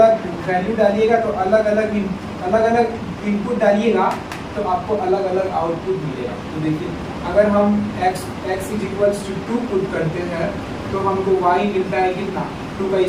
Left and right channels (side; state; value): both; identical; correlation 1.00